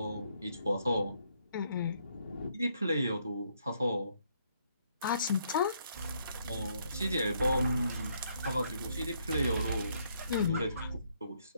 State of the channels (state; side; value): inverted; both; correlation -0.71